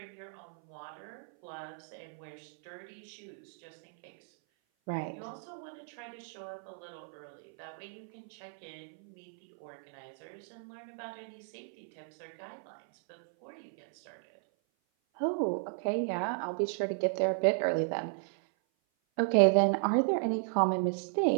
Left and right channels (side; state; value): left; silent; 55 dB below the other